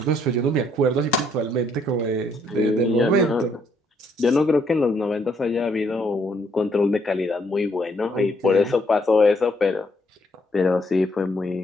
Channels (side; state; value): both; normal; correlation 0.70